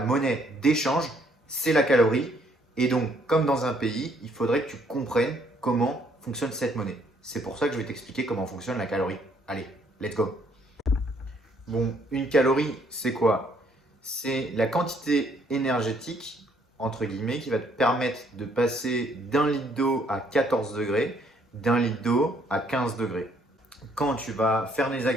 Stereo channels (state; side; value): normal; both; correlation 0.67